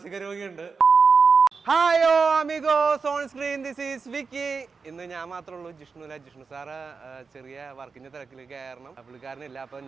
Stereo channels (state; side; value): quieter; left; 4.9 dB